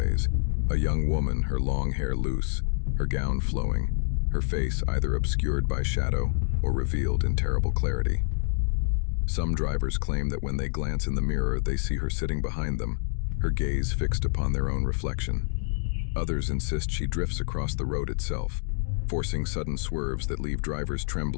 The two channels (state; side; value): silent; right; digital silence